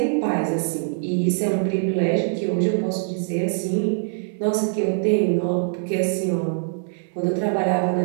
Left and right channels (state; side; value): silent; left; 63 dB below the other